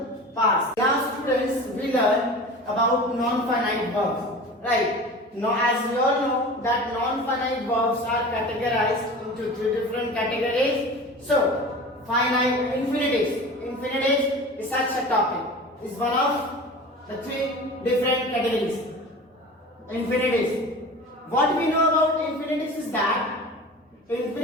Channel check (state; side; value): normal; both; correlation 0.36